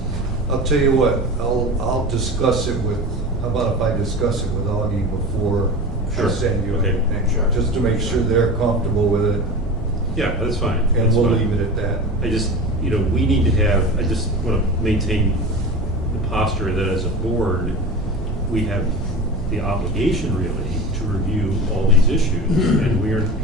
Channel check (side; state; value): right; noise; hum, 15 dB below the sound